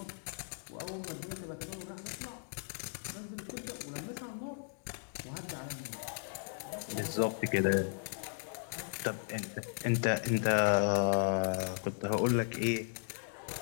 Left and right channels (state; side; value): silent; right; digital silence